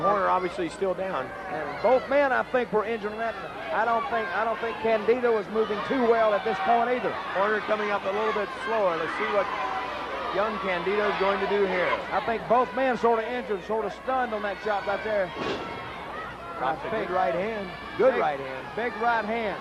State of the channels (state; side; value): identical; both; correlation 1.00